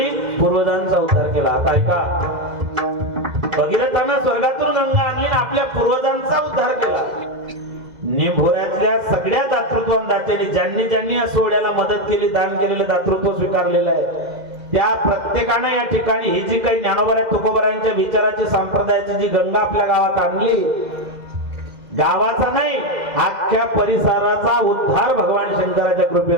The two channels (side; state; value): left; late; 2.0 ms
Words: पूर्वजांचा उद्धार केला आता ऐका भगीरथानं स्वर्गातून गंगा आणली आणि आपल्या पूर्वजांचा उद्धार केला निभोऱ्यातल्या सगळ्या दातृत्वान दात्यांनी ज्यांनी या सोहळ्याला मदत केली दान केलेलं दातृत्व स्वीकारलेलं आहे त्या प्रत्येकाने या ठिकाणी ही जी काही ज्ञानोबा तुकोबारायांच्या विचाराची संप्रदायाची जी गंगा आपल्या गावात आणली गावाचा नाही अख्ख्या परिसराचा उद्धार भगवान शंकराच्या